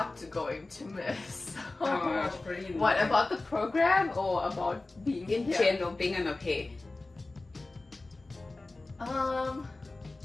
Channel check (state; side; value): quieter; right; 3.1 dB